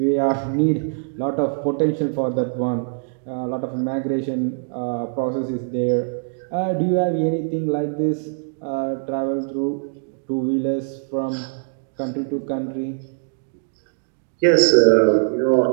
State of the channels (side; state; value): left; silent; digital silence